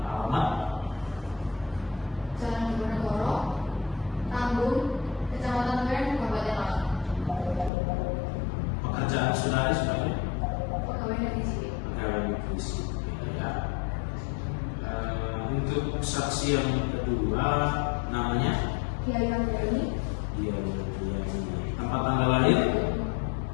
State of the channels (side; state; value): right; drops out; at 7.7 s